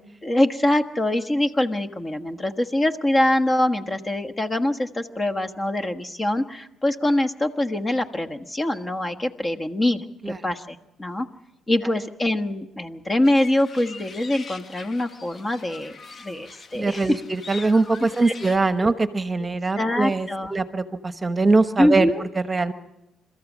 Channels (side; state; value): both; normal; correlation 0.94